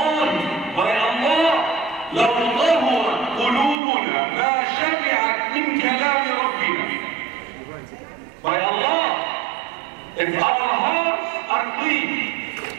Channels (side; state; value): left; drops out; at 3.8 s